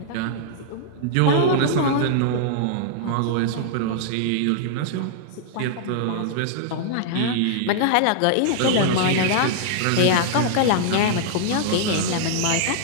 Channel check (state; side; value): different; both; correlation -0.01